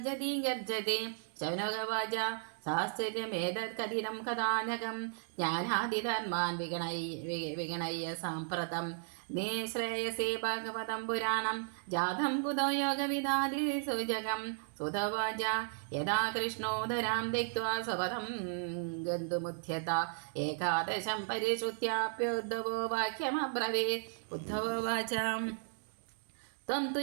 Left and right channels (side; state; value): left; silent; digital silence